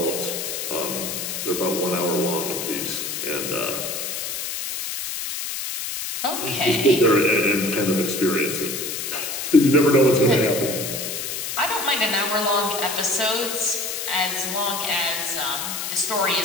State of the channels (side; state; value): left; noise; hiss, 4 dB below the sound